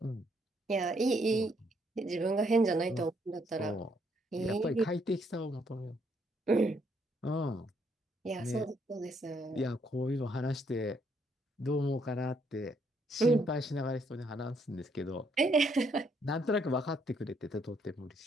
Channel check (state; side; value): normal; both; correlation 0.71